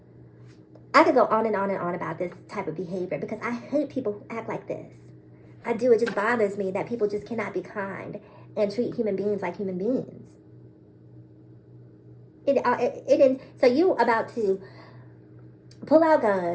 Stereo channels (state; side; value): identical; both; correlation 1.00